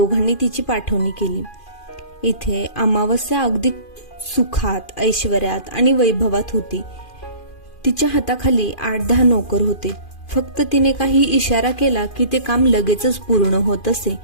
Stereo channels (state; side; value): late; right; 2.4 ms